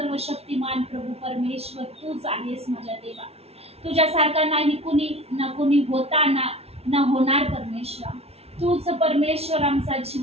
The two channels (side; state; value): left; late; 0.30 ms